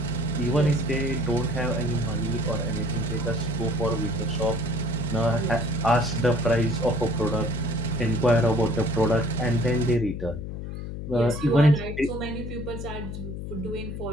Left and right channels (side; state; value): left; noise; hum, 7 dB below the sound